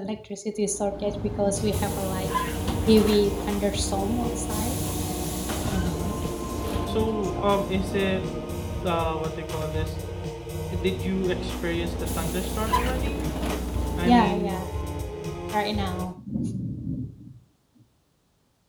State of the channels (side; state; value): both; identical; correlation 1.00